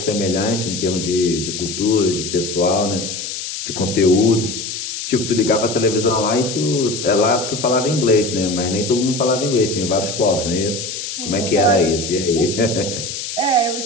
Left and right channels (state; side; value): noise; left; hiss, 6 dB below the sound